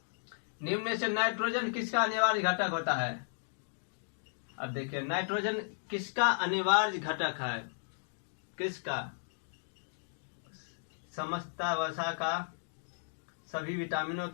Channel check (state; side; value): silent; right; digital silence